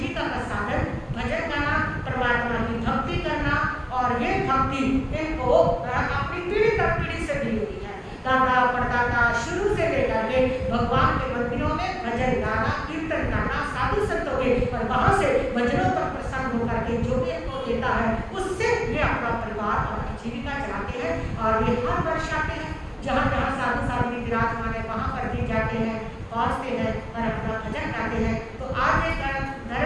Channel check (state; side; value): identical; both; correlation 1.00